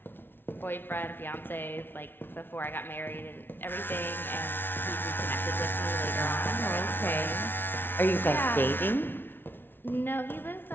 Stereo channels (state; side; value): late; right; 0.10 ms